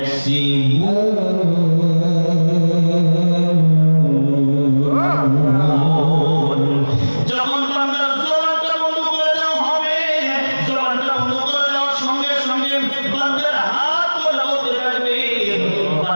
যখন বান্দার জবানটা বন্ধ করে দেওয়া হবে, জবানটা বন্ধ করে দেওয়ার সঙ্গে সঙ্গে বান্দার হাত লাগাতে থাকবে,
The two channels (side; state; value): both; inverted; correlation -1.00